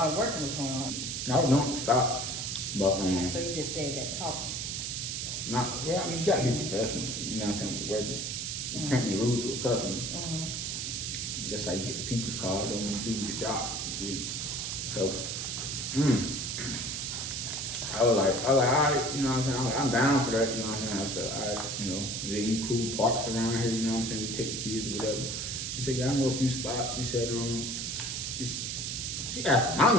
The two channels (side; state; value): right; noise; hiss, 3 dB below the sound